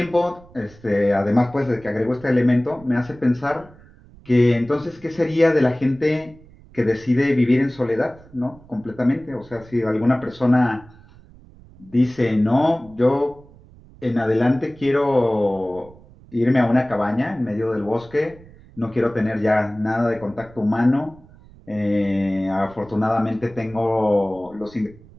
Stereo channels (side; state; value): right; noise; rumble, 23 dB below the sound